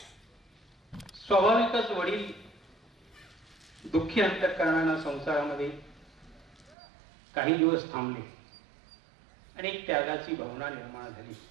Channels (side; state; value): left; drops out; at 6.8 s